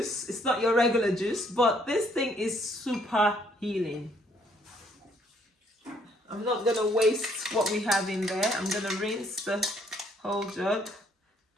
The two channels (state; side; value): normal; both; correlation 0.66